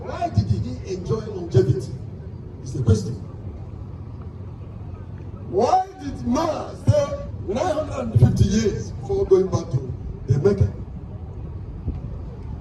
did he enjoy longevity? It's the question. Why did Noah stay 950 years before going back to the Mecca?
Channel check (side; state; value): both; identical; correlation 1.00